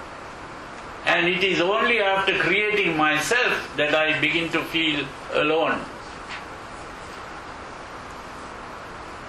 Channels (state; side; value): identical; both; correlation 1.00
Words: And it is only after creating myself that I begin to feel alone.